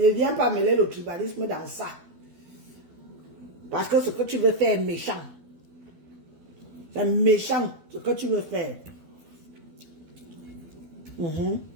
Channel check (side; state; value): left; late; 12 ms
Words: viens pas mêler le tribalisme dans ça. Parce que ce que tu veux faire est méchant. C'est méchant ce que tu veux faire.